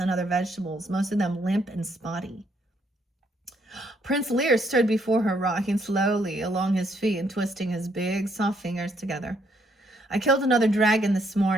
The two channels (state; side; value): normal; both; correlation 0.71